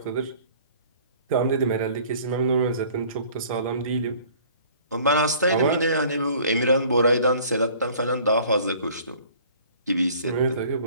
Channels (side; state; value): both; inverted; correlation -0.52